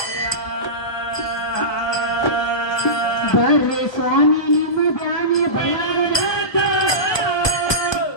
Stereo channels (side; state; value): right; late; 1.2 ms